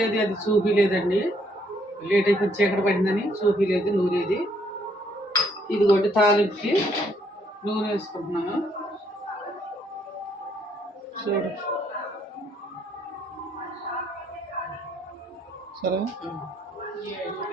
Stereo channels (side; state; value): both; normal; correlation 0.69